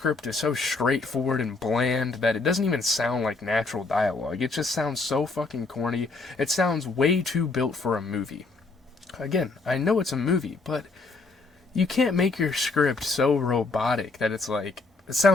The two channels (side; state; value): right; quieter; 3.7 dB